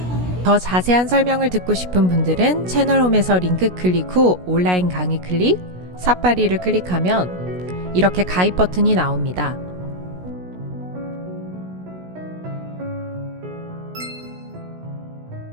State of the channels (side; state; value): left; late; 16 ms